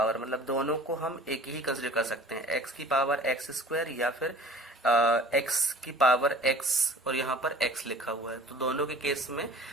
मतलब दोनों को हम एक ही कंसिडर कर सकते हैं, एक्स की पावर एक्स स्क्वायर या फिर एक्स की पावर एक्स और यहाँ पर एक्स लिखा हुआ है। तो दोनों के केस में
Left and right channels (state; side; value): normal; both; correlation 0.45